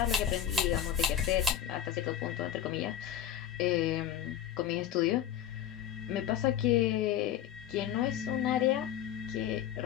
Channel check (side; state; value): right; quieter; 10.2 dB